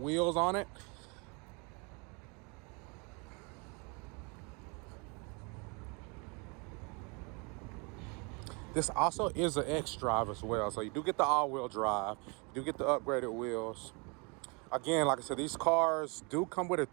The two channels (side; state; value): left; quieter; 31.6 dB